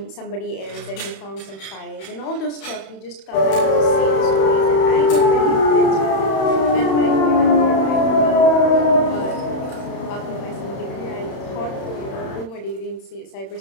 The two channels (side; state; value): right; late; 31 ms